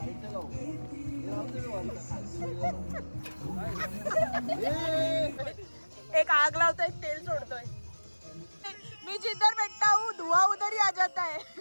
एक आग लावतोय तेल सोडतोय. मी जिधर बैठा हूँ धुआं उधर ही आ जाता है.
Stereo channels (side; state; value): both; inverted; correlation -1.00